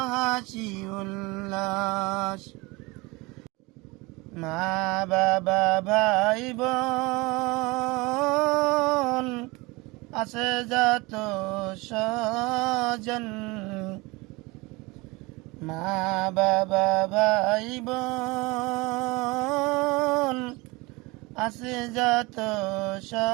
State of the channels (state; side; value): quieter; left; 24.3 dB